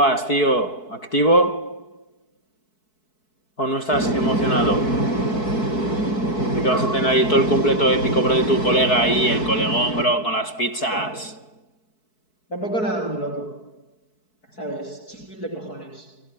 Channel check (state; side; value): late; right; 4.6 ms